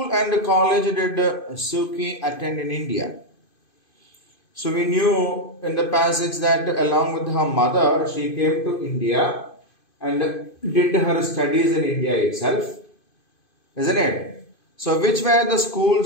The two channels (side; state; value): right; late; 2.5 ms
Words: and college did Suu Kyi attend in India? So we knew in the passage that along with her mother, she came to India and did her studies in India itself. Isn't it? So which were the schools